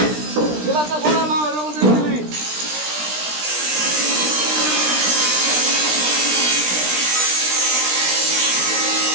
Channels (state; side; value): late; left; 17 ms